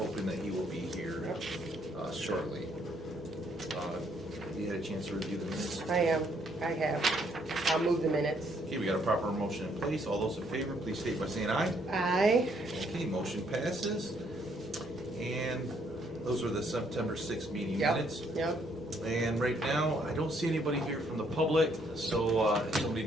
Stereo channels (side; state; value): both; normal; correlation 0.69